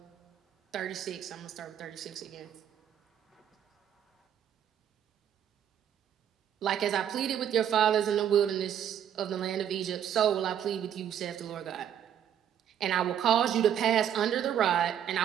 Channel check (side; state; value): left; quieter; 9.7 dB